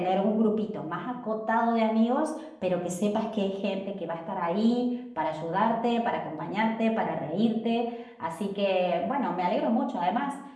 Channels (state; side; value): identical; both; correlation 1.00